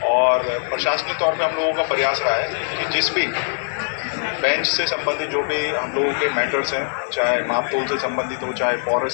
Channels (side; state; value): right; silent; 61 dB below the other